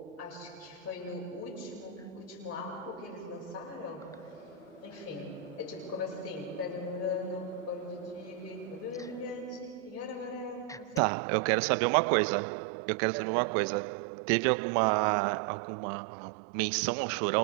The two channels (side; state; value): left; drops out; at 11.0 s